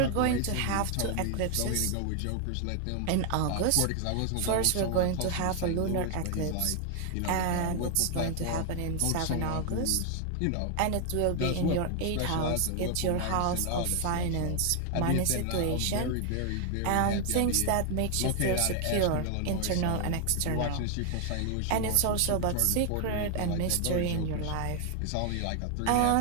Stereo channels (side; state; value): both; different; correlation 0.00